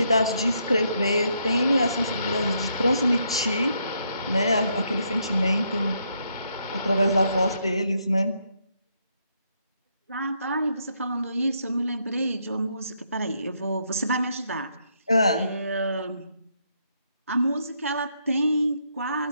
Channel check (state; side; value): inverted; both; correlation -0.75